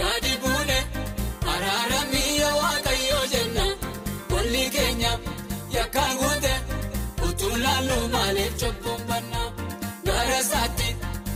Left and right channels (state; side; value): identical; both; correlation 1.00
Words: gadi buune araaramii yaa Waaqayyo jenna walli keenya yakkaan guute utuu laallu maaliif cubbuun banna gara isaatti